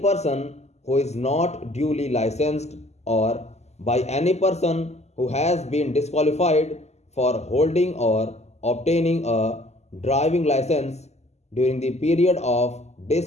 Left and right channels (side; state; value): right; late; 0.32 ms